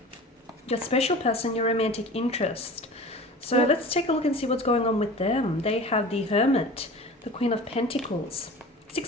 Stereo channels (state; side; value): normal; both; correlation 0.38